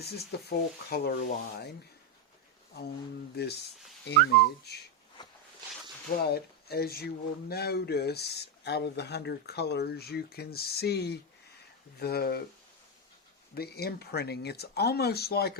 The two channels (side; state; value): both; normal; correlation 0.05